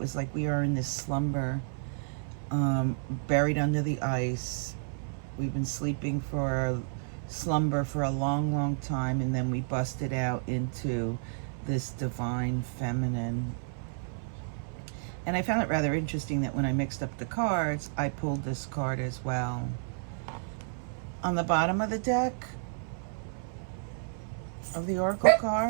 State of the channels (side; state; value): left; silent; 57 dB below the other